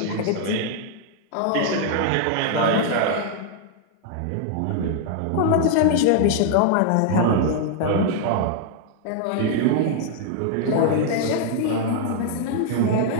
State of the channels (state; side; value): different; both; correlation -0.01